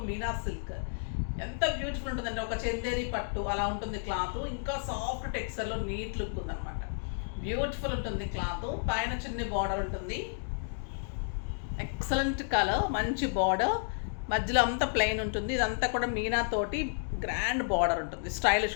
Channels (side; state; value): right; silent; digital silence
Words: మీనా సిల్క్ ఎంత బ్యూటిఫుల్ ఉంటుందంటే ఒక చందేరి పట్టు అలా ఉంటుంది క్లాత్. ఇంకా సాఫ్ట్ టెక్స్చర్లో నీట్ లుక్ ఉందన్నమాట. బ్యూటిఫుల్ ఉంటుంది క్లాత్. పైన చిన్న బార్డర్ ఉంటుంది, ఎక్సలెంట్ కలర్, మంచి బార్డర్, మధ్యలో అంతా ప్లెయిన్ ఉంటుంది. ఇదంతా కూడా మీనా తోటి గ్రాండ్ బార్డర్ ఉంటుంది, స్టైలిష్